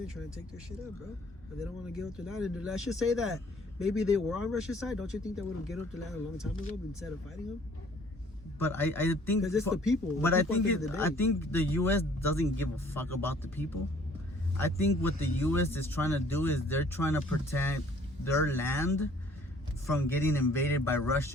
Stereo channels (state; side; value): normal; both; correlation 0.57